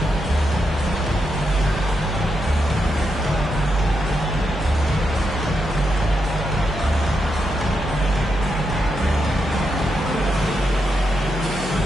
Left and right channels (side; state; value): both; normal; correlation 0.84